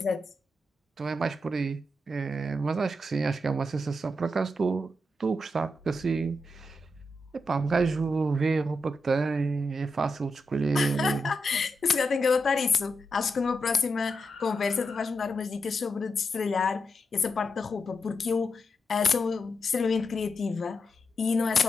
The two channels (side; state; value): both; normal; correlation 0.85